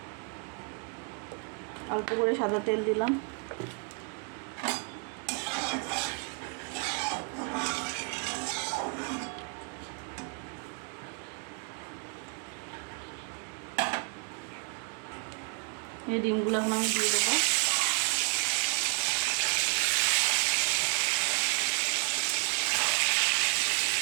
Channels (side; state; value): left; quieter; 38.2 dB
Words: অল্প করে সাদা তেল দিলাম। এই ডিমগুলো এখন আমি দিয়ে দেবো।